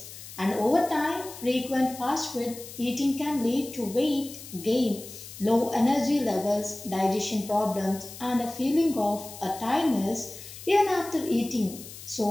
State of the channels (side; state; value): left; noise; hiss, 14 dB below the sound